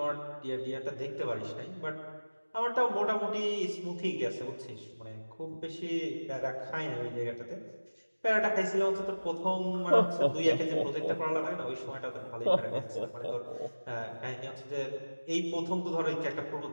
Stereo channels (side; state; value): both; inverted; correlation -1.00